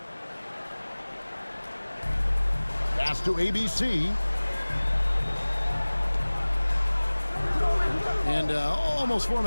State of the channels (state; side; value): inverted; both; correlation -1.00